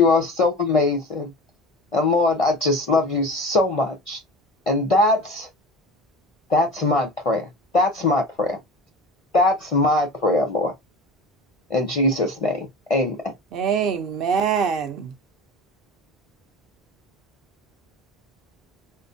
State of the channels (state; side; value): normal; both; correlation 0.34